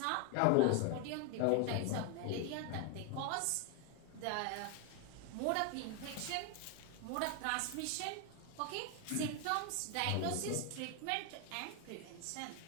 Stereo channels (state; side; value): different; both; correlation 0.01